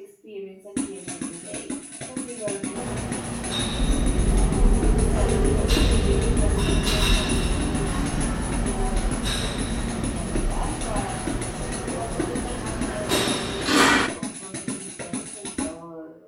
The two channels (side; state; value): both; identical; correlation 1.00